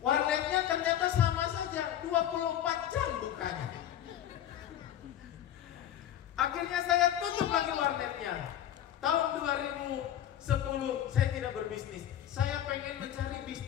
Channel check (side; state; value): right; quieter; 11.1 dB